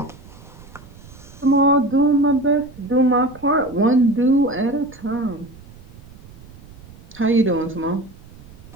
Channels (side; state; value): right; noise; rumble, 20 dB below the sound